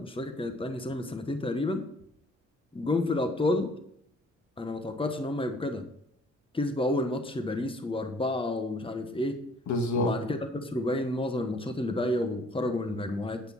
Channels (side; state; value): both; normal; correlation 0.59